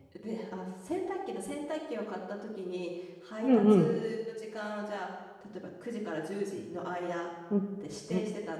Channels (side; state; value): both; identical; correlation 1.00